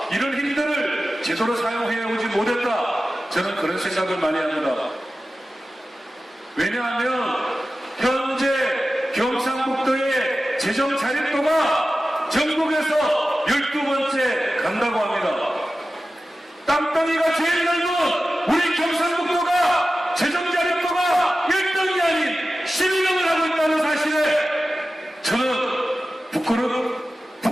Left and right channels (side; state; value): both; normal; correlation 0.95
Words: 이런 힘들을 제대로 사용해오지 못했다. 저는 그런 생각을 많이 합니다. 왜냐하면 현재 경상북도의 재정 자립도가 전국에서 12번째 간다고 합니다. 땅덩이가 제일 넓은 우리 경상북도가 재정 자립도가 1등이 아닌 12등을 하고 있다는 사실에 저는